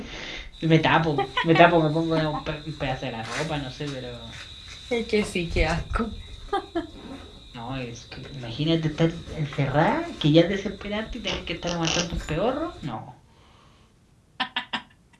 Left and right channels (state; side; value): identical; both; correlation 1.00